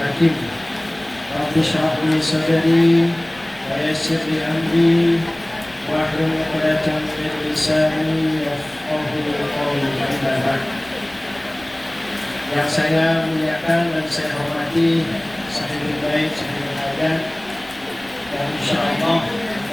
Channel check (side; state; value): left; noise; rumble, 25 dB below the sound